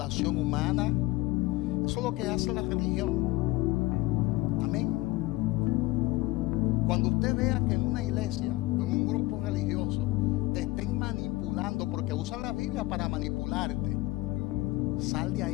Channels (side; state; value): right; quieter; 19.9 dB